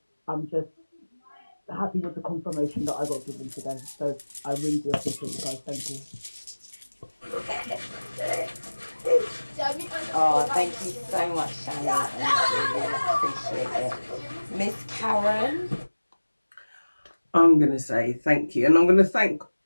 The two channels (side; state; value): both; inverted; correlation -1.00